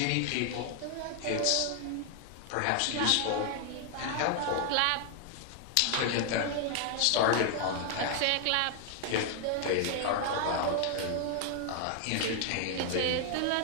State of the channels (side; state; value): both; different; correlation 0.00